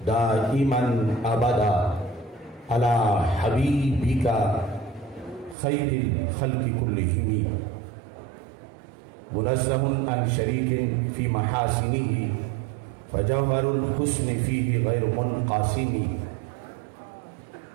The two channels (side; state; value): left; drops out; at 5.6 s